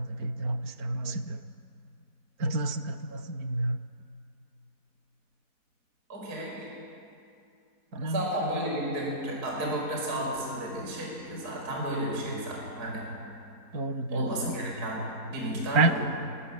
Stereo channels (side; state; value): left; late; 4.4 ms